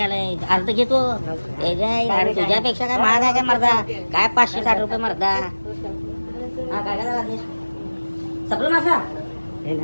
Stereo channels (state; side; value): inverted; both; correlation -1.00